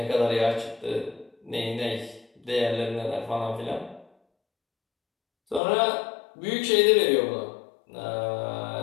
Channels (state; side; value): drops out; right; at 5.6 s